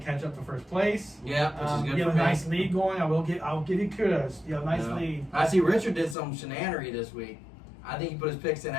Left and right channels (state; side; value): drops out; right; at 6.2 s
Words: catch up to first place. Yeah, which is good you for have a me. nice lead going. I'll give you kudos. You have a nice lead. I see Richard did some shenanery this week. I think he put his picks in